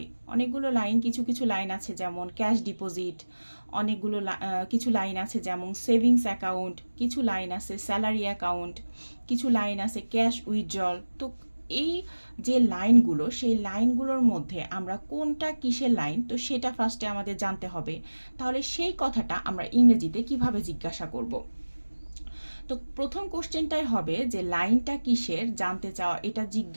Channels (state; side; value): inverted; both; correlation -1.00